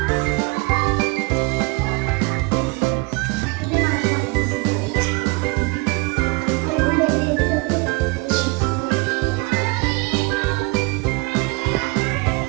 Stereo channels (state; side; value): quieter; left; 27.0 dB